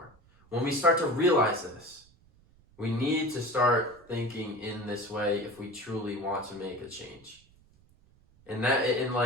When we start to realize this, we need to start thinking in this way if we truly want to make a change. And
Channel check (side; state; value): right; noise; rumble, 29 dB below the sound